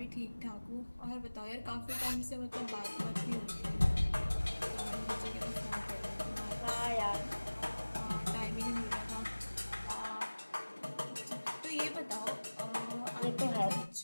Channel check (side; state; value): both; inverted; correlation -1.00